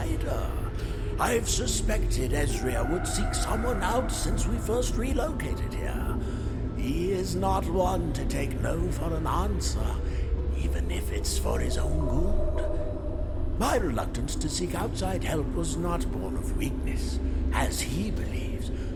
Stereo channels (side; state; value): both; identical; correlation 1.00